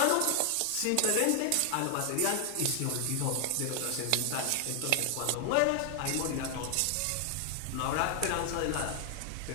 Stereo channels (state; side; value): different; both; correlation 0.00